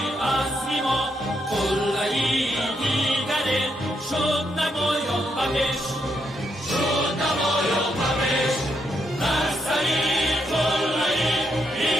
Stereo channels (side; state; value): both; normal; correlation 0.79